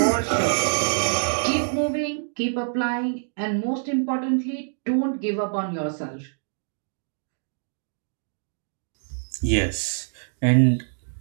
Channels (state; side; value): silent; left; digital silence